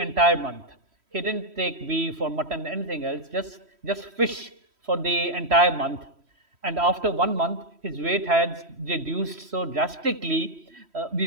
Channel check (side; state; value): left; late; 3.1 ms